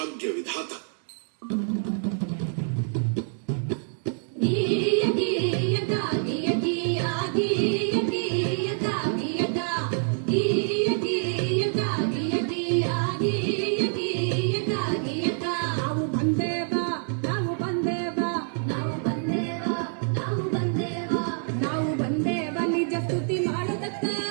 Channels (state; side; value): silent; left; digital silence